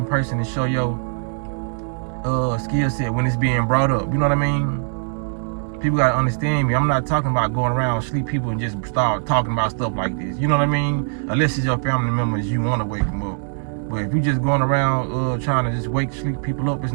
person and show your skill set when it's being brought up? You know what I mean? People got to understand me. I'm not talking about going around sleep people and just start talking about stuff like this. You know what I mean? Unless it's your family members, you want to wake them up. But if you just going around trying to just sleep people up, it's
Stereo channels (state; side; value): silent; left; 64 dB below the other